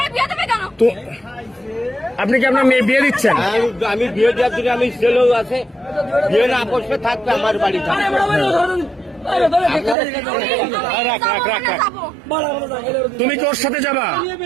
বিয়ে দেবে কেন? তো আপনি কি আপনার মেয়ে বিয়ে দিচ্ছেন? আমি বিয়ে দেওয়ার জন্য আমি ছেলেও আছে, বিয়ে না আপসে থাকবে আমার বাড়ি থাকবে। তুমি কি ওর সাথে যাবা?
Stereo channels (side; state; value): left; drops out; at 10.0 s